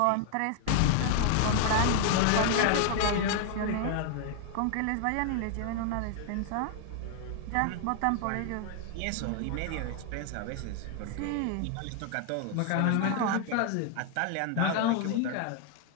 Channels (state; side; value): different; both; correlation 0.00